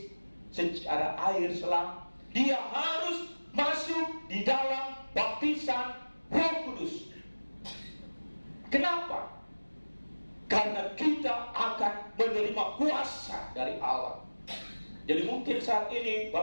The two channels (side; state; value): both; inverted; correlation -1.00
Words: secara air selang. Dia harus masuk di dalam baptisan Roh Kudus. Kenapa? Karena kita akan menerima kuasa dari Allah. Jadi mungkin saat ini